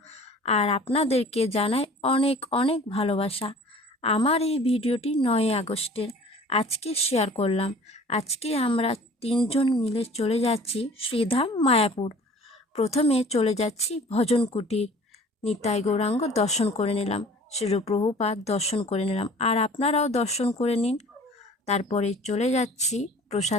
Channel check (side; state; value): both; normal; correlation 0.47